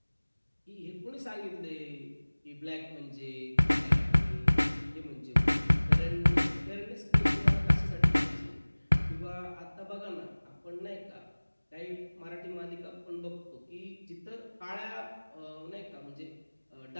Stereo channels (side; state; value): both; inverted; correlation -1.00